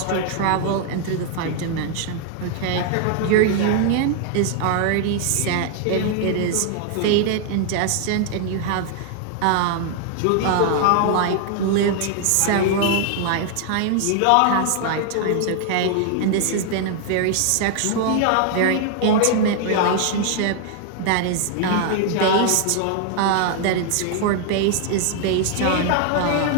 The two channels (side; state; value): both; different; correlation 0.00